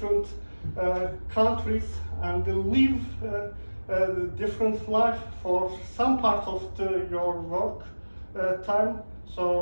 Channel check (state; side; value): inverted; both; correlation -1.00